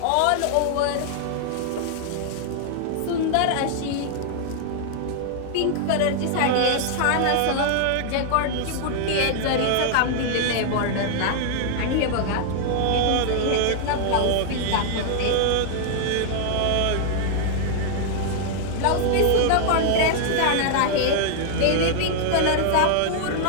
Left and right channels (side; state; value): both; different; correlation -0.01